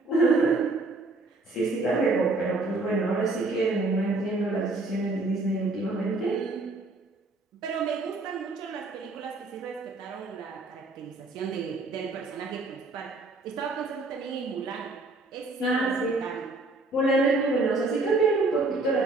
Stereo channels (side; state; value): left; quieter; 3.2 dB